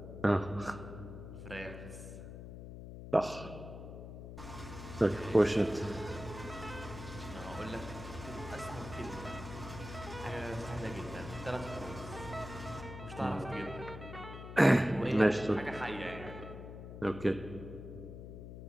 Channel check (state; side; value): noise; left; hum, 11 dB below the sound